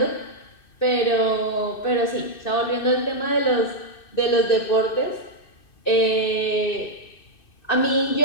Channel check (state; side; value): late; right; 2.6 ms